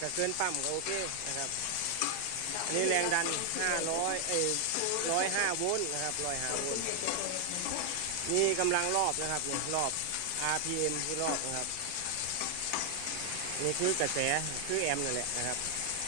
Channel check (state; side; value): different; both; correlation 0.00